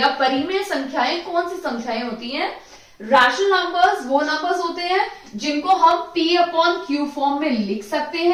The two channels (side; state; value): both; identical; correlation 1.00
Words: परिमेय संख्याएं कौन सी संख्याएं होती हैं। रैशनल नंबर्स वो नंबर्स होते हैं जिनको हम P अपॉन Q फॉर्म में लिख सकते